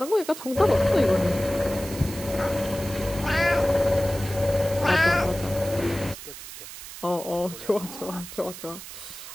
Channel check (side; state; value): right; noise; hiss, 13 dB below the sound